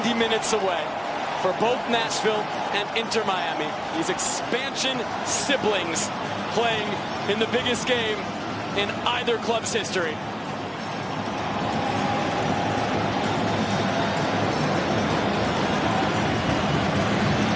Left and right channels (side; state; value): both; identical; correlation 1.00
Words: minutes away for both Nashville and Inter Miami. These expansion siblings playing in the biggest game in either club's history.